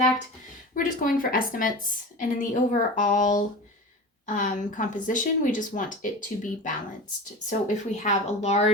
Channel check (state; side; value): normal; both; correlation 0.31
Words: We're just going for estimates, and in the overall composition, we just want it to be balanced. So if we have a